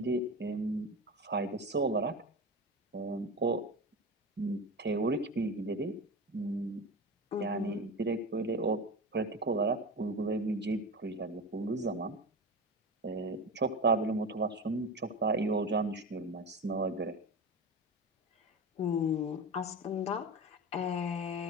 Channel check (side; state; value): both; normal; correlation 0.25